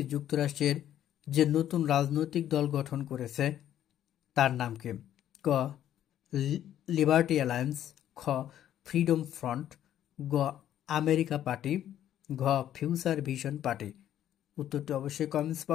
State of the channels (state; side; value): quieter; right; 11.3 dB